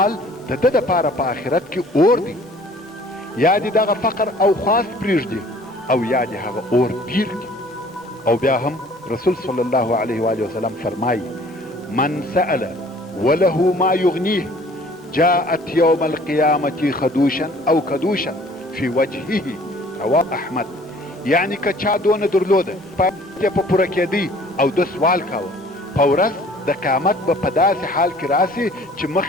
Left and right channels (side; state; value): both; normal; correlation 0.53